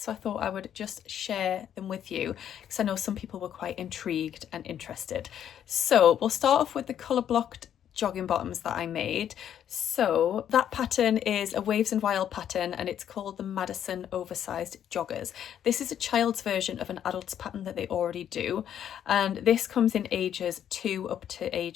so I thought I would just share them with you because I know some people were quite intrigued and interested. So we'll start off with the colour blocked jogging bottoms that I made. So that pattern is a Waves and Wild pattern, and it's called the Madison Oversized Joggers. This is a child's version of an adult's pattern that they already do, and this comes in ages 2 up to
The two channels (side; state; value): right; quieter; 9.8 dB